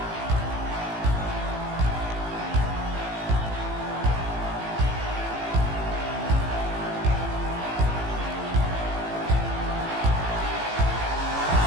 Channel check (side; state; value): left; late; 18 ms